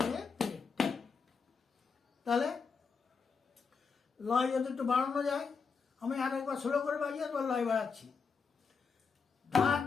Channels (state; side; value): quieter; right; 5.4 dB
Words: তে তে। তাহলে লয় যদি একটু বাড়ানো যায়, আমি আর একবার স্লো করে বাজিয়ে একবার লয় বাড়াচ্ছি। ধা